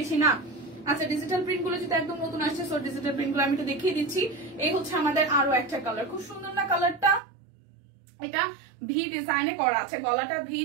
বেশি না। আচ্ছা, ডিজিটাল প্রিন্ট গুলো যেটা একদম নতুন আসছে, সো ডিজিটাল প্রিন্ট গুলো আমি একটু দেখিয়ে দিচ্ছি। এই হচ্ছে আমাদের আরো একটা কালার, খুব সুন্দর না কালারটা? এটা ভি ডিজাইনে করা আছে, গলাটা ভি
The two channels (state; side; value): drops out; left; at 7.2 s